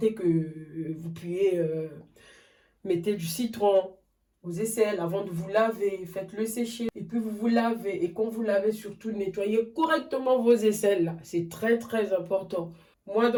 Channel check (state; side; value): identical; both; correlation 1.00